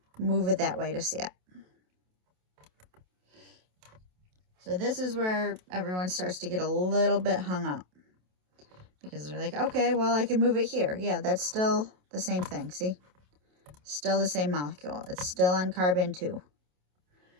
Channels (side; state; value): left; late; 27 ms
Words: move it that way to see it. So this is where everyone starts to get a little bit hung up. Because they're like, okay, well, I can move it here. Yeah, that's still the same thing, see? Still the same molecule. It's still on carbon 2.